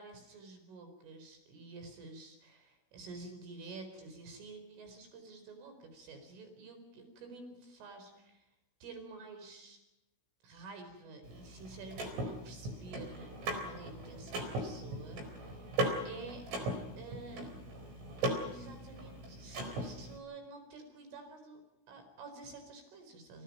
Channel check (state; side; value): late; left; 16 ms